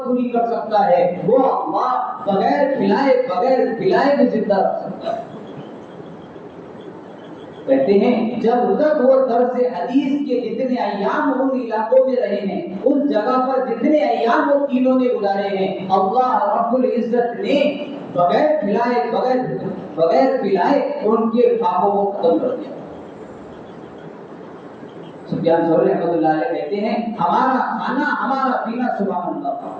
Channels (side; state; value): both; identical; correlation 1.00